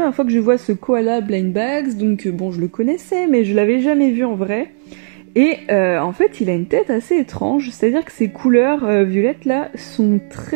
fois que je vois ce koala blind bags, donc bon, je le connaissais, mais je l'avais jamais vu en vrai. Et en fait, il a une tête assez étrange, c'est-à-dire que ses couleurs violettes là sont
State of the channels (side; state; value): left; silent; digital silence